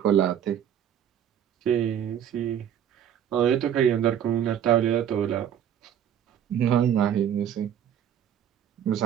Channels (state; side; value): quieter; left; 9.6 dB